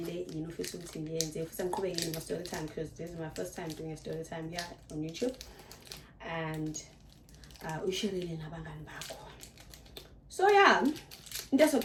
yini ufisa ukuthi ngiyenze futhi ngiqhubeke yini story time because this is my first time doing a story time here on YouTube and ushirile nabangani bakho. So yeah, into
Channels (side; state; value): both; identical; correlation 1.00